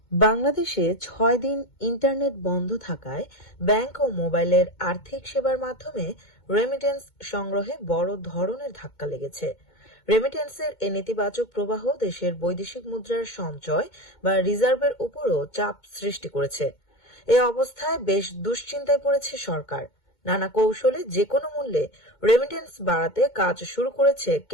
বাংলাদেশে ৬ দিন ইন্টারনেট বন্ধ থাকায় ব্যাংক ও মোবাইলের আর্থিক সেবার মাধ্যমে রেমিটেন্স সংগ্রহে বড় ধরনের ধাক্কা লেগেছে। রেমিটেন্সের এ নেতিবাচক প্রবাহ দেশের বৈদেশিক মুদ্রার সঞ্চয় বা রিজার্ভের উপরও চাপ সৃষ্টি করেছে। এ অবস্থায় বেশ দুশ্চিন্তায় পড়েছে সরকার। নানা কৌশলে যেকোনো মূল্যে রেমিটেন্স বাড়াতে কাজ শুরু করেছে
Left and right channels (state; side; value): late; right; 2.2 ms